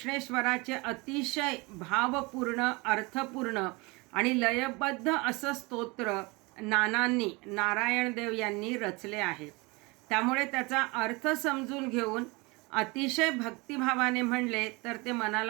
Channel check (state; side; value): quieter; left; 26.0 dB